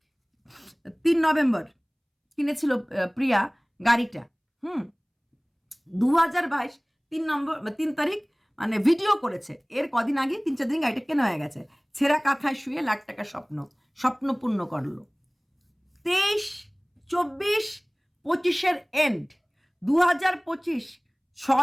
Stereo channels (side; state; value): both; identical; correlation 1.00